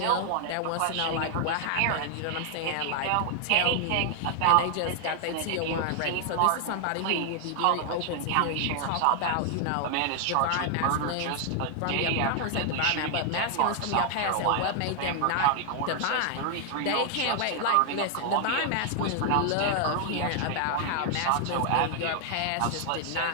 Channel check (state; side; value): different; both; correlation 0.00